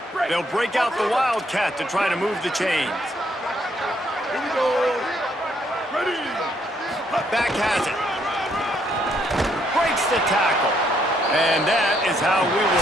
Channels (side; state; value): both; normal; correlation 0.71